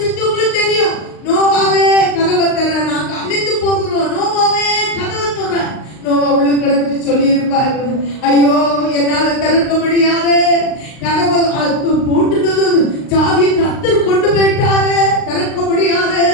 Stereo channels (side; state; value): right; late; 38 ms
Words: தெரியும். நோவாவே கதவை தர, நாங்க அழிந்து போகிறோம், நோவாவே கதவை தர. நோவா உள்ள கிடந்துட்டு சொல்லி இருப்பாரு, ஐயோ என்னால திறக்க முடியாது, கதவை போட்டுனது சாவியை கர்த்தர் கொண்டு போயிட்டாரு, திறக்க முடியாது.